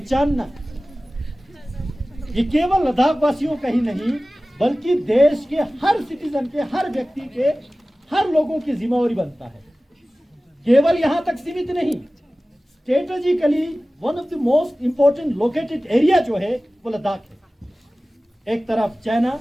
ये केवल लद्दाख वासियों का ही नहीं बल्कि देश के हर सिटीजन के, हर व्यक्ति के, हर लोगों की जिम्मेवारी बनता है। केवल यहां तक सीमित नहीं, strategically one of the most important located area जो है वो लद्दाख है। एक तरफ चाइना,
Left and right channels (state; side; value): normal; both; correlation 0.97